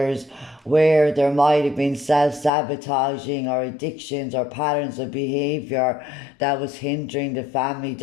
where there might have been self-sabotaging or addictions or patterns of behavior that was hindering the family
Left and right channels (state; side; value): drops out; right; at 2.5 s